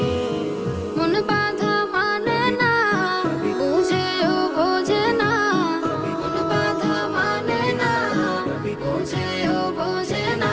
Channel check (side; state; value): both; identical; correlation 1.00